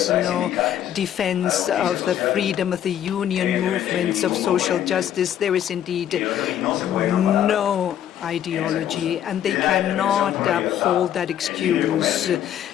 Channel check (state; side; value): quieter; right; 10.6 dB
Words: no defense of the freedom of the union movements of social justice, there is indeed no ideology, and they cannot uphold that excuse.